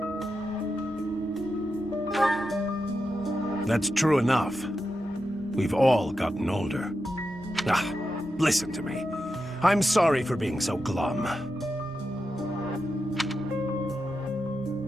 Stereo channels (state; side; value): normal; both; correlation 0.88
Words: That's true enough. We've all gotten older. Ah, listen to me. I'm sorry for being so glum.